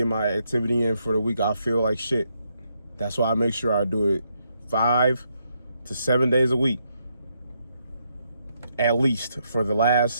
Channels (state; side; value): inverted; both; correlation -0.78